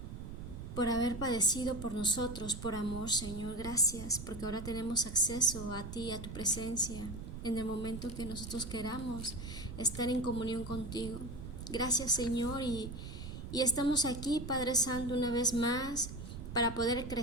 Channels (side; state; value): right; noise; rumble, 9 dB below the sound